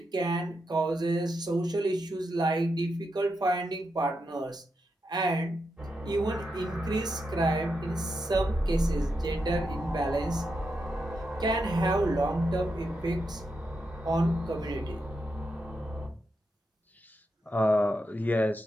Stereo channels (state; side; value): normal; both; correlation 0.85